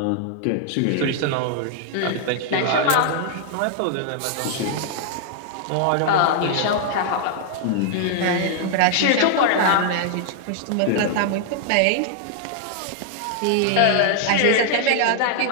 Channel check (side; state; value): both; different; correlation 0.00